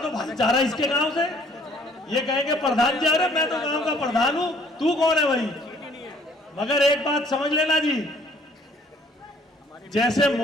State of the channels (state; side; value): normal; both; correlation 0.59